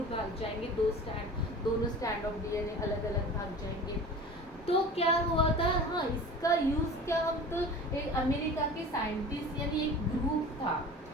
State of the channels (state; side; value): normal; both; correlation 0.38